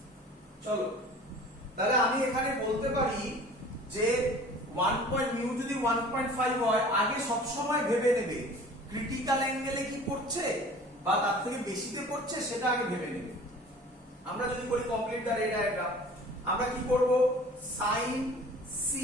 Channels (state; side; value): normal; both; correlation 0.45